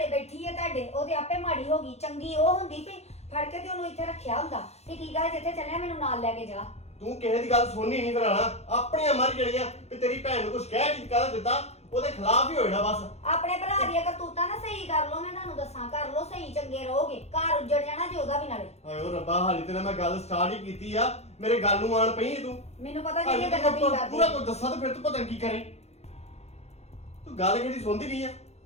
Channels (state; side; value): late; right; 0.31 ms